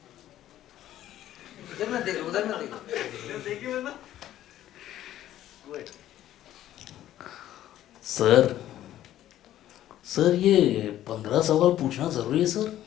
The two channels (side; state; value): right; quieter; 12.8 dB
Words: उधर ना देखो उधर ना देखो. सर सर ये 15 सवाल पूछना जरूरी है सर.